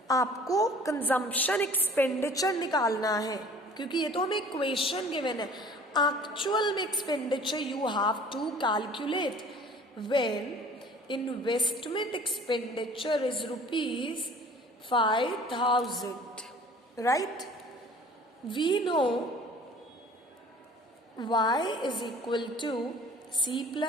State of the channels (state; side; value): normal; both; correlation 0.49